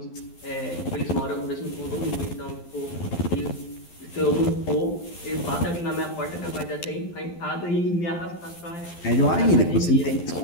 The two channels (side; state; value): right; late; 12 ms